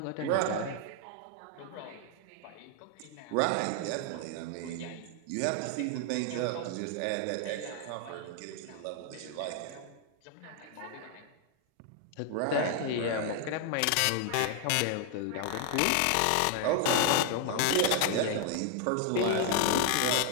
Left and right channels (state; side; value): different; both; correlation 0.00